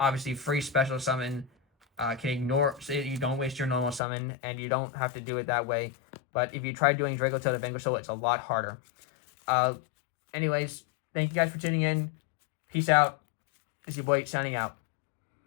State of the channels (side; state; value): right; drops out; at 4.0 s